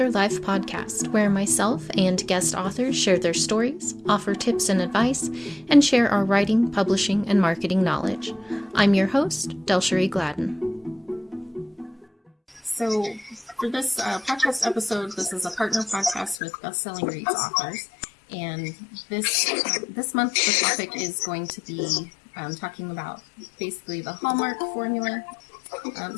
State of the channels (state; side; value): drops out; right; at 16.4 s